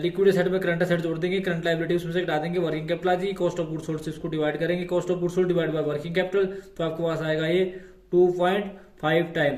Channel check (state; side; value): identical; both; correlation 1.00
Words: लिक्विड असेट में करंट असेट जोड़ देंगे, करंट लाइबिलिटी उसमें से घटा देंगे, वर्किंग कैपिटल आ जाएगी, कॉस्ट ऑफ गुड्स सोल्ड से इसको डिवाइड करेंगे, cost of goods sold divide by working capital, तो आपके पास आएगा ये 2.5